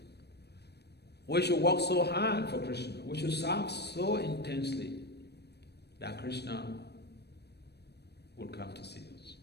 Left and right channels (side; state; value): right; late; 0.48 ms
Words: We should work so hard for Krishna. We should serve so intensely that Krishna will come to see us.